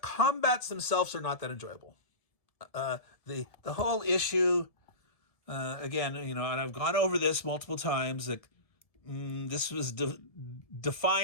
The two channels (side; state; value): right; late; 1.7 ms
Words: themselves are not that enjoyable. The whole issue, again, and I've gone over this multiple times. Like, this was